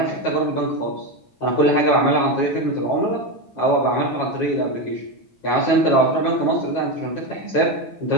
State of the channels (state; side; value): late; right; 9.2 ms